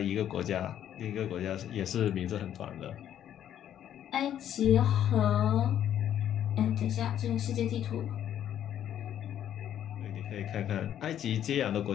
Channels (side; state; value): right; quieter; 10.5 dB